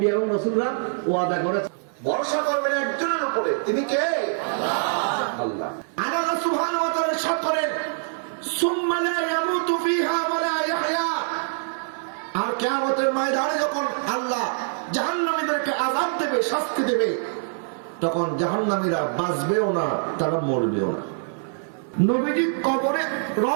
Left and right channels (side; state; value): left; silent; 62 dB below the other